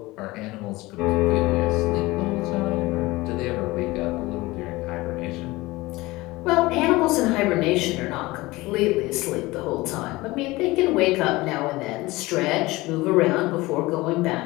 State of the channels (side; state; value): right; quieter; 20.6 dB